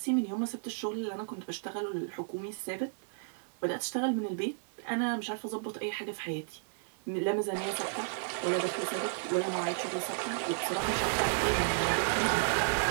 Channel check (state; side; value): silent; left; digital silence